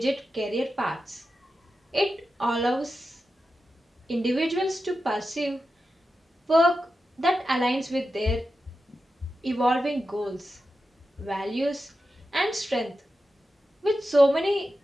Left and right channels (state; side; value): normal; both; correlation 0.91